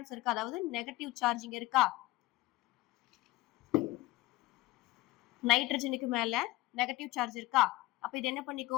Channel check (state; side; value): quieter; right; 19.3 dB